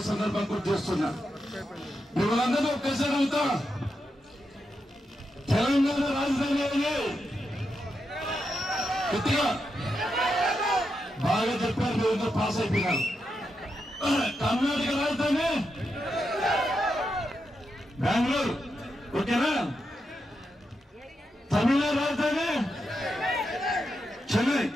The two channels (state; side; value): normal; both; correlation 0.85